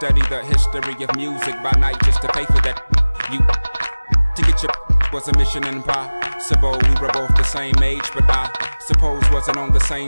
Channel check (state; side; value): inverted; both; correlation -0.99